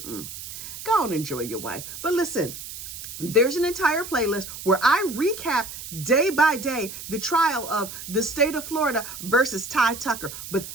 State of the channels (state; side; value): noise; right; hiss, 11 dB below the sound